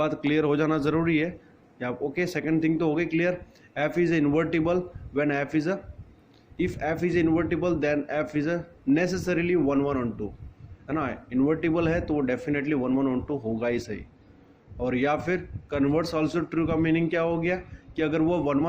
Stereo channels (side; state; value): both; identical; correlation 1.00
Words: क्लियर हो जाना ज़रूरी है। या ओके, सेकंड थिंग तो हो गई clear. F is invertible when f is a, if f is invertible then f is a necessarily 1 1 on 2, है ना। इन्वर्टिबल है तो वो डेफिनेटली 1 1 ऑन 2 होगा ही सही। और या फिर कन्वर्स ऑल्सो ट्रू का मीनिंग क्या हो गया कि अगर वो 1